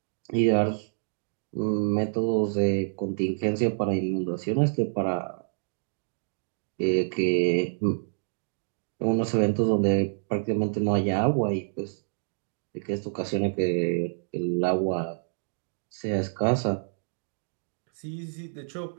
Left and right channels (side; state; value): left; silent; digital silence